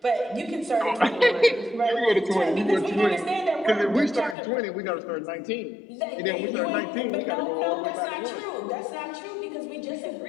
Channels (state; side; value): drops out; right; at 4.4 s